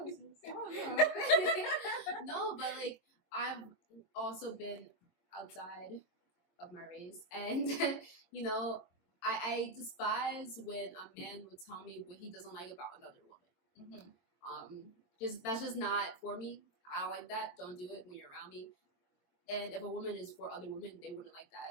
No, but like, I've also been outside of my race, and I despise when a man would tell me what he doesn't like about another woman. That's just not for me. I don't like that. Don't do it when you're around me. And if a woman is for other women, they wouldn't like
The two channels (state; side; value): late; right; 22 ms